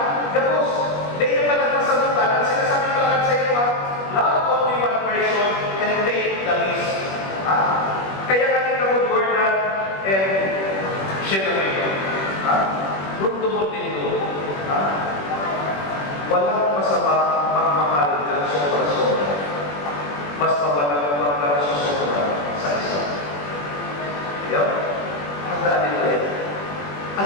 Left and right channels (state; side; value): late; right; 21 ms